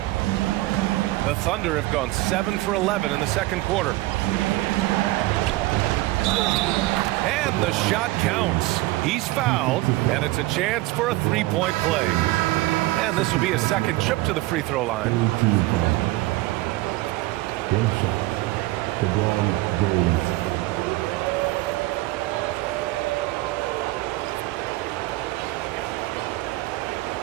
The Thunder have gone 7 for 11 in the second quarter. And the shot counts. He's fouled, and it's a chance for a 3-point play. And this will be a second trip to the free throw line.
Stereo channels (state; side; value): quieter; left; 18.9 dB